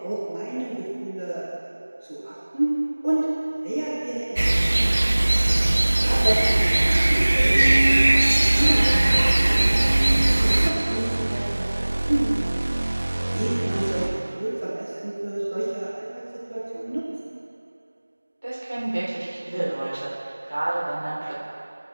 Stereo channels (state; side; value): inverted; both; correlation -1.00